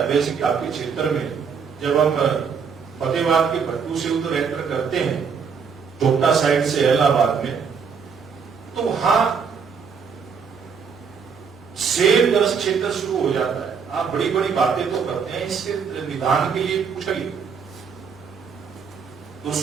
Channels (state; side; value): quieter; left; 6.2 dB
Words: सिंह आपके क्षेत्र में जब हम फतेहाबाद के भट्टू से उधर एंटर करते हैं चोपटा साइड से इलाहाबाद में, तो वहां सेब ग्रस्त क्षेत्र शुरू हो जाता है। आप बड़ी बड़ी बातें तो करते हैं, इसके निदान के लिए कुछ करिए। तो